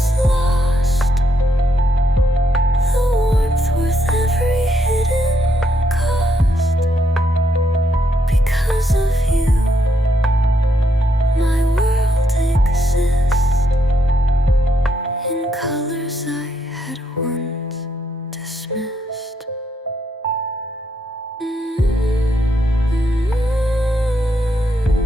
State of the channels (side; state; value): both; normal; correlation 0.77